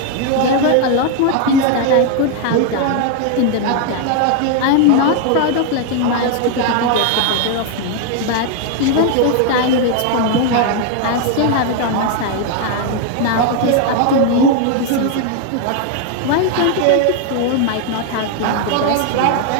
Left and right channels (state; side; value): different; both; correlation 0.00